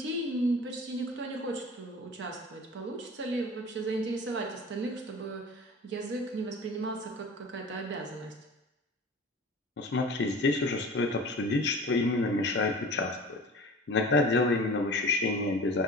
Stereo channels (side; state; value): both; normal; correlation 0.39